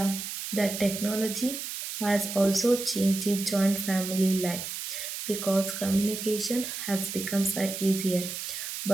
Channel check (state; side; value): noise; right; hiss, 6 dB below the sound